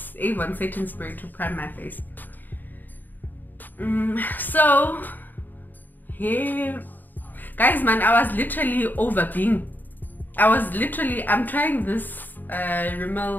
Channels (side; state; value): right; late; 0.089 ms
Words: Avon setting spray to prime my face. So here, guys, man, I was literally I'm trying this